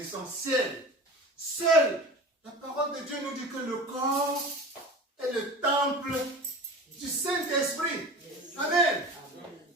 Seule la parole de Dieu nous dit que le corps est le temple du Saint-Esprit. Amen.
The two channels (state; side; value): normal; both; correlation 0.35